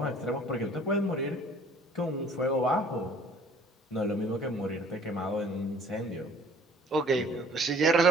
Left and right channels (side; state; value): both; normal; correlation 0.54